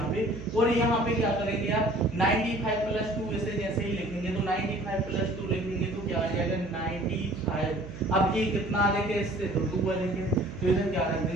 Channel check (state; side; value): noise; right; hum, 13 dB below the sound